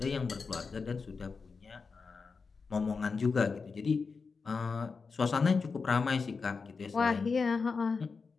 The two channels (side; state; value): right; quieter; 4.8 dB